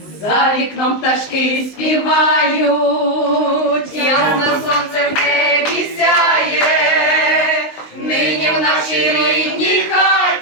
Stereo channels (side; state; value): right; late; 19 ms